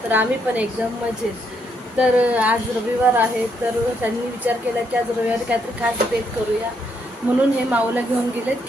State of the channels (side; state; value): both; normal; correlation 0.75